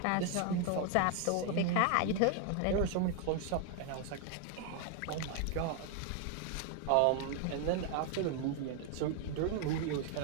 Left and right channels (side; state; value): both; different; correlation 0.00